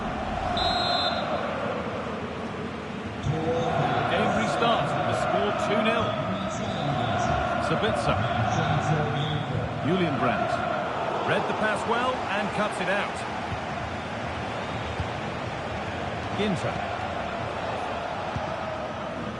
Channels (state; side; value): identical; both; correlation 1.00